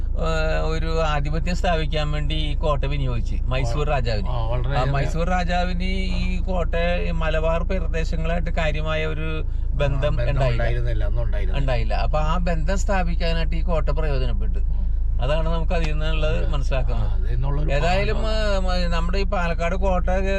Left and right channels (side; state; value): both; identical; correlation 1.00